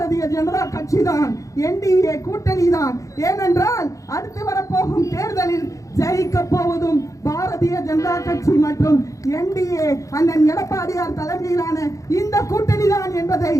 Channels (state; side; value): late; right; 0.16 ms